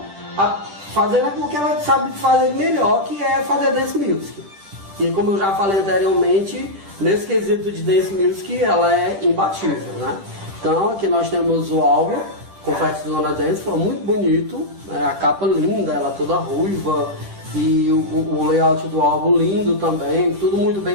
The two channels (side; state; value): left; late; 10 ms